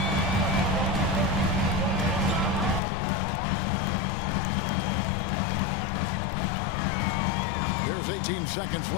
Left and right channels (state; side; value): drops out; right; at 2.8 s